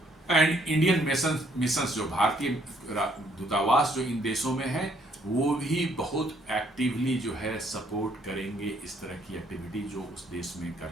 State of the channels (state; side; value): normal; both; correlation 0.67